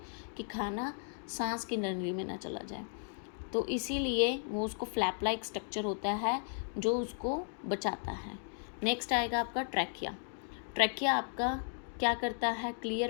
कि खाना सांस की नली में ना चला जाए, तो इसीलिए वो उसको फ्लैप लाइक स्ट्रक्चर होता है जो उसको बचाता है। नेक्स्ट आएगा आपका ट्रैकिया। ट्रैकिया आपका क्या करता है,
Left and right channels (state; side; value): silent; right; digital silence